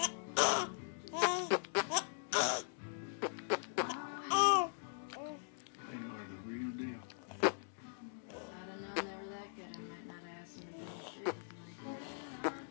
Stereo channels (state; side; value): silent; right; digital silence